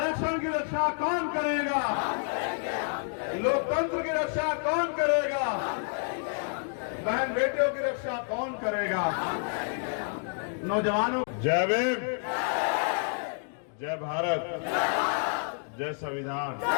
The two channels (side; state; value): right; silent; 58 dB below the other